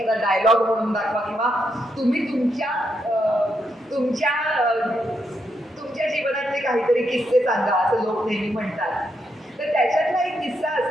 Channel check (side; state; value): both; normal; correlation 0.80